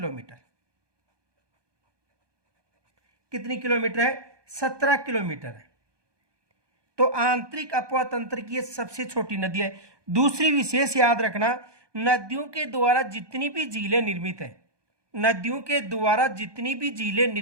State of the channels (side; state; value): left; late; 1.2 ms